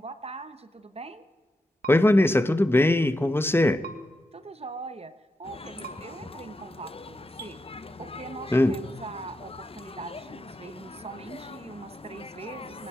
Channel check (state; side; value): normal; both; correlation 0.86